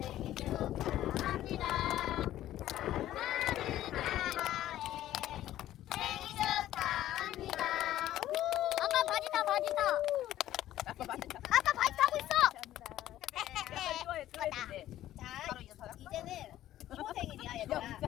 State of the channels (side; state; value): right; quieter; 13.3 dB